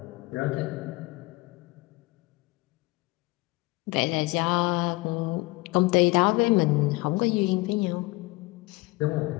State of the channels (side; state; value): right; quieter; 22.8 dB